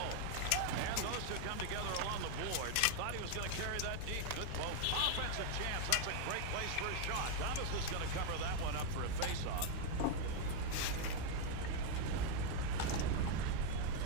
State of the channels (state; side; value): different; both; correlation 0.00